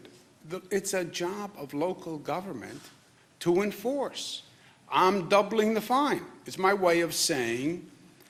it's a job of local government to enforce. I'm doubling the fine. It's my way of saying,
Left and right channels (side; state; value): both; identical; correlation 1.00